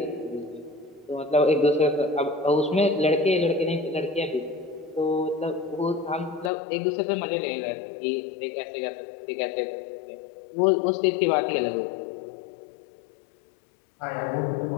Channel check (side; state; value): right; drops out; at 6.5 s